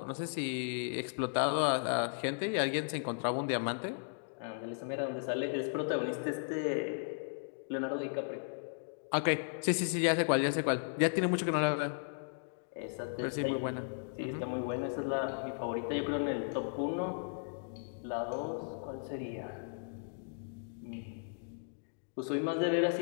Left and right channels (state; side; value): silent; right; digital silence